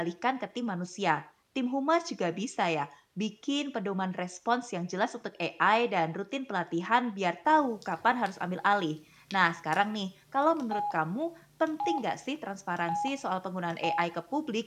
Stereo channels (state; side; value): identical; both; correlation 1.00